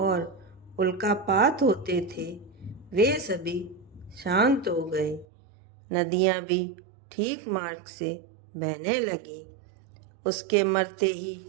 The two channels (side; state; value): left; drops out; at 5.2 s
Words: उल्कापात होते थे वे सभी शांत हो गए। नदियाँ भी ठीक मार्ग से बहने लगी। उसके मरते ही